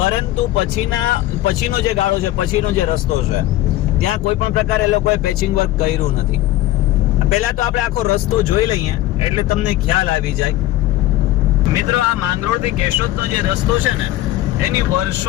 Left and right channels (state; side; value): quieter; right; 15.6 dB